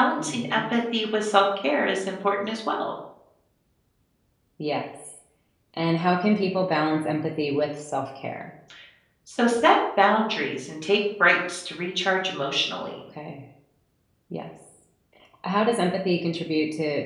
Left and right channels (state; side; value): identical; both; correlation 1.00